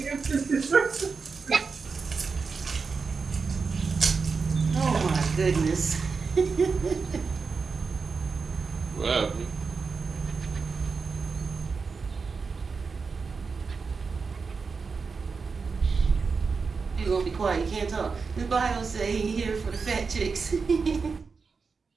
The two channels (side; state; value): left; quieter; 4.9 dB